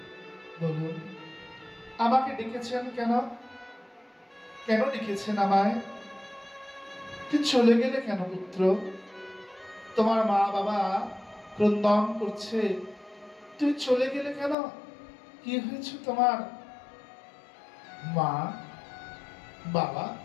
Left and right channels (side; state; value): right; drops out; at 14.6 s